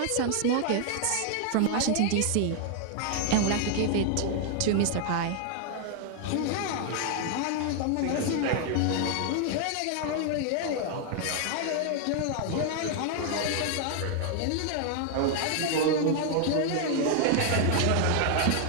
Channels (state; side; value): different; both; correlation 0.00